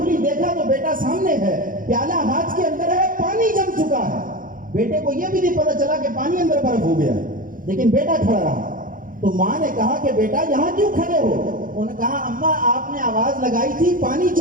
دیکھا تو بیٹا سامنے ہے، پیالہ ہاتھ کے اندر ہے، پانی جم چکا ہے. بیٹے کو یہ بھی نہیں پتا چلا کہ پانی اندر برف ہو گیا، لیکن بیٹا کھڑا رہا. تو ماں نے کہا کہ بیٹا یہاں کیوں کھڑے ہو؟ انہوں نے کہا اماں آپ نے آواز لگائی تھی پانی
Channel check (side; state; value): left; late; 0.40 ms